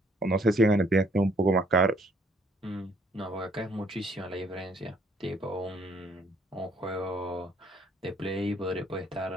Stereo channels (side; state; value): both; normal; correlation 0.65